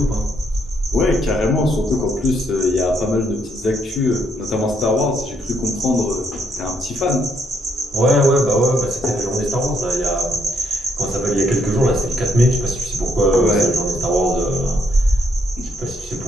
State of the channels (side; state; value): both; normal; correlation 0.73